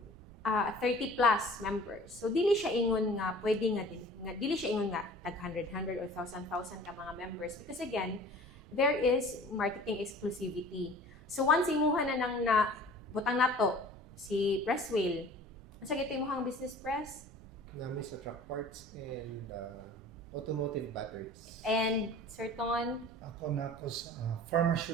30 plus members. So dili siya ingon nga pwede nga dili siya ingon nga tag 100 or 1,000 ka mga members because again there is marketing exclusivity. So once imuha na nang na butang nato si Presswheel. Unsa gito imong business press? Namin sa truck parts and automotive batteries. And Sir Ton, Ako na ako sa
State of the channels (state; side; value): noise; right; rumble, 20 dB below the sound